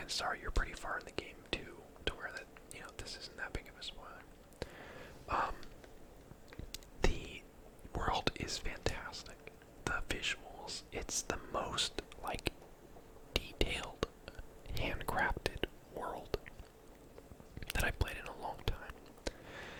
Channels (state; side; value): identical; both; correlation 1.00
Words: are you're pretty far in the game too, to where that, this isn't that big of a spoiler. The world is fantastic. The visuals, it's the most, like, detailed, handcrafted world that I've played in a long time.